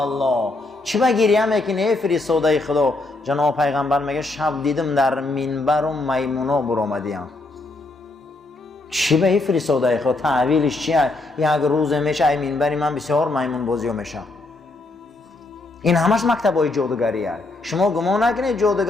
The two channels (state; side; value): quieter; right; 3.0 dB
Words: چی به گریه میکنی ای فرستاده خدا؟ جناب پیغمبر میگه شب دیدم در منبر و میمونا برآمدیم. چی به ای فرستاده خدا؟ تعویلش چیه؟ یک روز میشه ای منبری من بسیار میمون بازی میشه. این همش مکتبای جادوگری است. شما گمان نکنید